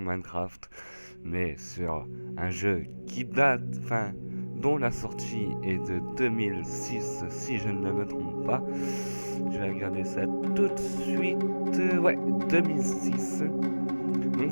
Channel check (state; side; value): inverted; both; correlation -1.00